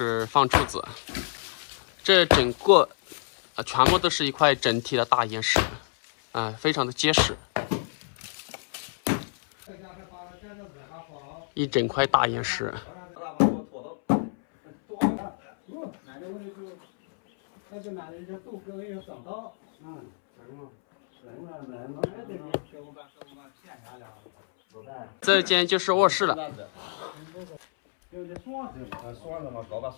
放柱子。这整个全部都是一块整体的大岩石，非常的结实。一整块大岩石。他就拿人家豆根要长高，这间就是卧室了。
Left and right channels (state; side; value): silent; right; 60 dB below the other